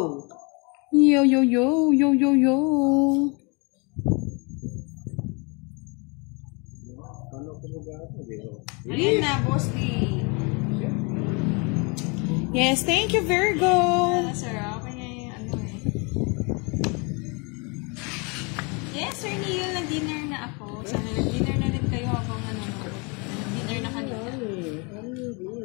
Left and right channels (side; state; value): right; quieter; 31.4 dB